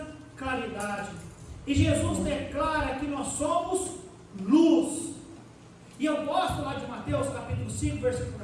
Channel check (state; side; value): identical; both; correlation 1.00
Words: claridade. E Jesus declara que nós somos luz. E eu gosto lá de Mateus capítulo 5, versículo